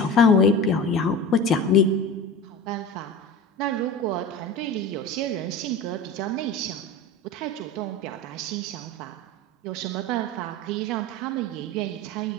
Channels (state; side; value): normal; both; correlation 0.32